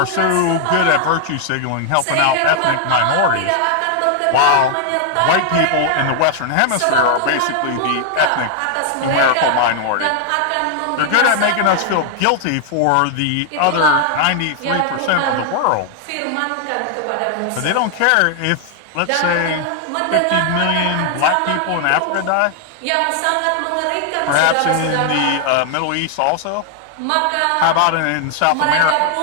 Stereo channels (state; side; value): different; both; correlation 0.00